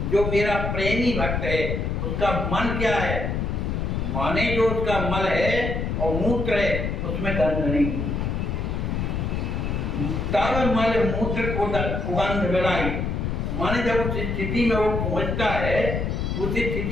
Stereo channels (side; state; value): left; noise; rumble, 1 dB below the sound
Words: जो मेरा प्रेमी भक्त है उसका मन क्या है, माने जो उसका मल है और मूत्र है उसमें गंध नहीं। तब मल मूत्र को सुगंध बिड़ाई, माने जब उस स्थिति में वो पहुंचता है, उस